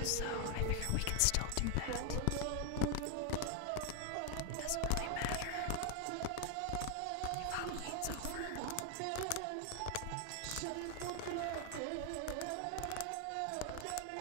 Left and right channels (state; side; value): different; both; correlation 0.00